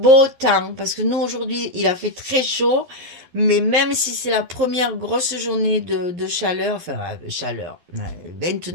temps parce que nous, aujourd'hui, il a fait très chaud. Mais même si c'est la première grosse journée de chaleur, enfin, chaleur,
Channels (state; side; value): late; left; 11 ms